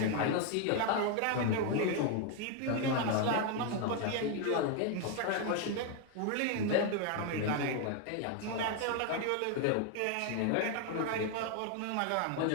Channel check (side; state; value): both; different; correlation 0.01